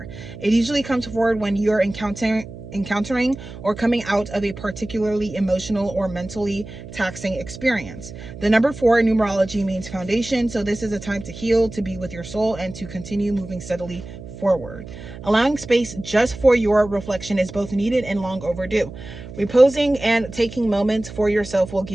It usually comes forward when you're encountering or coming out of a particularly emotional or mentally taxing experience. The number 4 in numerology means foundation, so this is a time to heal, to be with your soul, and to continue moving steadily forward. Allowing space just for your reflection is both needed and long overdue. Reposing and taking moments for yourself will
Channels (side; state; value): right; noise; hum, 14 dB below the sound